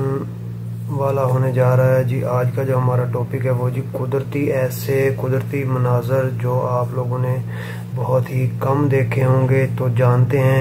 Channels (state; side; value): identical; both; correlation 1.00